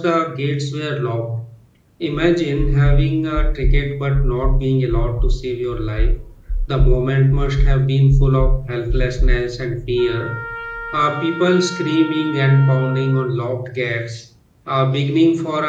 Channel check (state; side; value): identical; both; correlation 1.00